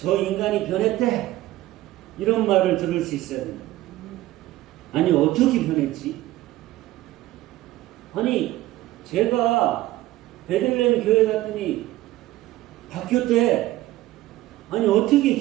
인간이 변했대. 이런 말을 들을 수 있어요. 아니 어떻게 변했지? 아니 제가 베들레헴 교회 갔더니 바뀌었대. 아니 어떻게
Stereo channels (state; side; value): quieter; left; 16.0 dB